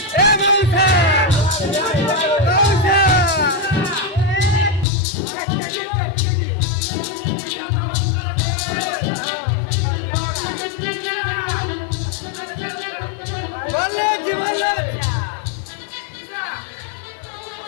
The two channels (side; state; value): right; drops out; at 4.9 s